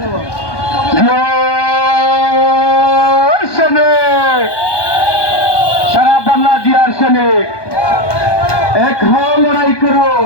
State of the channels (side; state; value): right; late; 1.2 ms